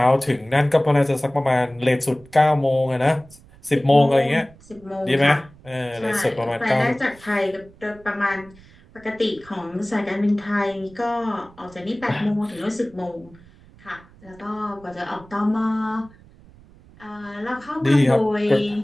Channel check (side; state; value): right; noise; rumble, 25 dB below the sound